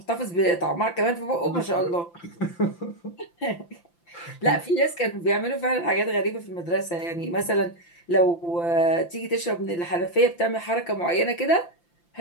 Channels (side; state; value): right; late; 5.8 ms